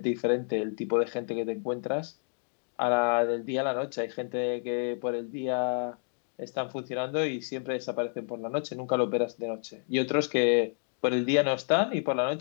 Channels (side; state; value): right; silent; 58 dB below the other